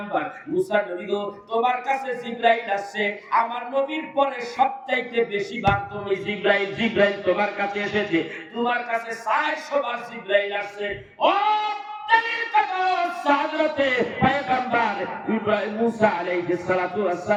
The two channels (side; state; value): both; identical; correlation 1.00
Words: মুসা নবী গো, তোমার কাছে জিবরাইল আসছে। আমার নবীর পরে সবচাইতে বেশি বার তুমি জিবরাইল তোমার কাছে এসেছে, তোমার কাছে 400 বার জিবরাইল আসছে। ও হযরতে পয়গম্বর ইব্রাহিম মুসা আলাইহিস সালাতু ওয়াস